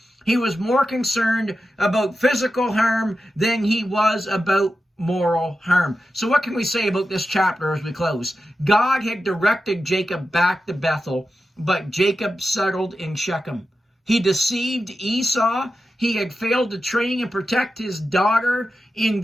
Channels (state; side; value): normal; both; correlation 0.91